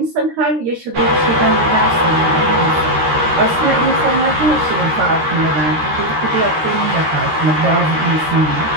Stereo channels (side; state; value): left; late; 13 ms